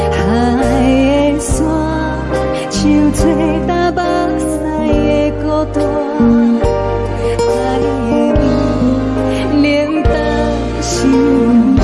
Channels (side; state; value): both; identical; correlation 1.00